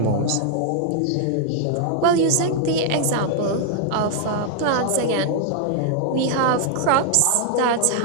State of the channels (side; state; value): both; different; correlation 0.00